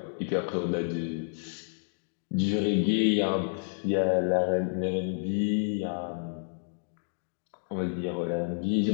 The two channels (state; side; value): silent; right; digital silence